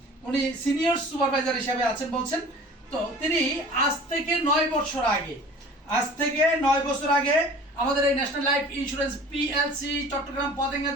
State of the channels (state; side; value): normal; both; correlation 0.44